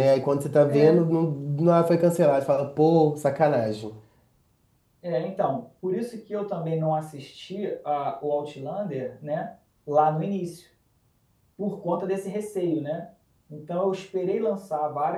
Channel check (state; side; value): identical; both; correlation 1.00